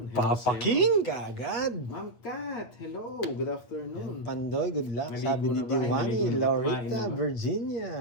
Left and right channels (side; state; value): right; late; 8.5 ms